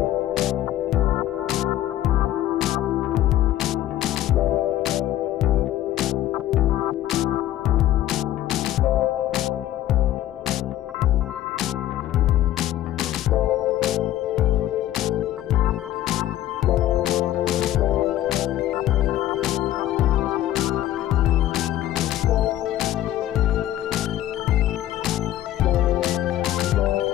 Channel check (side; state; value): right; quieter; 13.3 dB